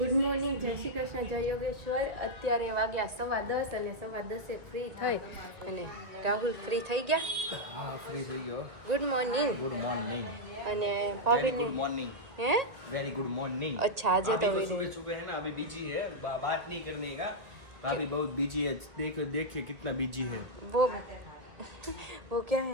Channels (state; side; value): late; left; 1.8 ms